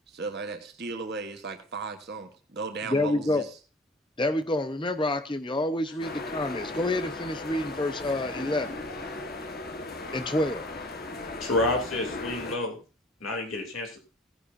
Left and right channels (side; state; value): both; normal; correlation 0.48